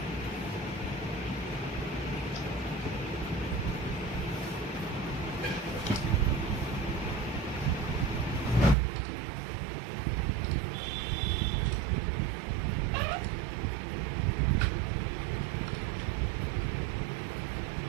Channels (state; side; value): drops out; left; at 8.8 s